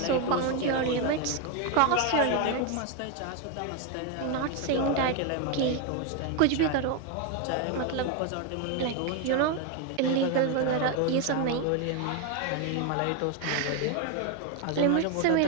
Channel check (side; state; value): both; different; correlation 0.01